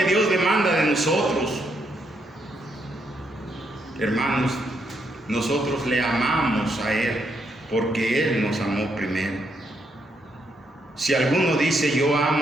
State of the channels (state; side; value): normal; both; correlation 0.77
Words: Dios demanda de nosotros. Hermanos, nosotros le amamos a Él porque Él nos amó primero. Si alguno dice yo